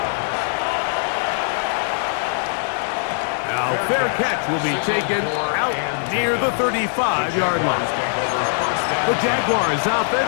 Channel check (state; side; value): silent; right; digital silence